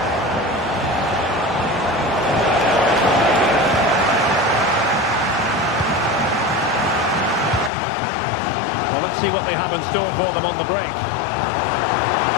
Well, let's see what they have in store for them on the break.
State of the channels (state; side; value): drops out; right; at 7.7 s